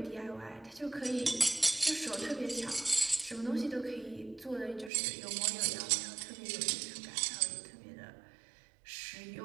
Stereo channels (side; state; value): left; drops out; at 4.9 s